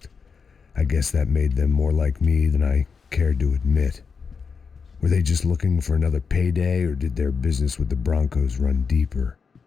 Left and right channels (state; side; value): quieter; right; 5.6 dB